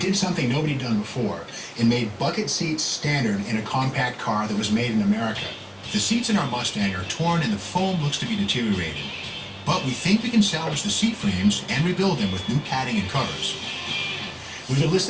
did something nobody had done before. It made bucket seats standard in a compact car that was made in America. The seats in our Mustang are torn and the foam looks to be deteriorated. But we think we can salvage the seat frames and rebuild them with new padding and covers. We've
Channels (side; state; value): both; identical; correlation 1.00